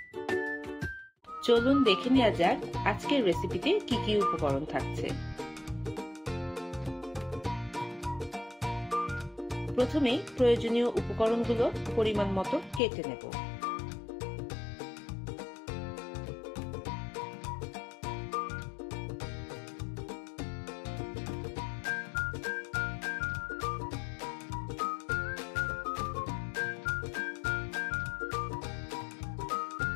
চলুন দেখে নেওয়া যাক আজকের রেসিপিতে কি কি উপকরণ থাকছে। প্রথমেই প্রয়োজনীয় উপকরণগুলো পরিমাণ মতো কেটে নেব।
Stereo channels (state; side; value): drops out; right; at 12.8 s